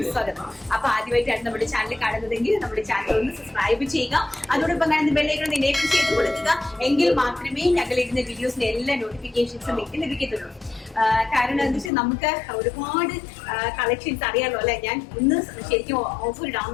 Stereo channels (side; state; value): right; drops out; at 11.9 s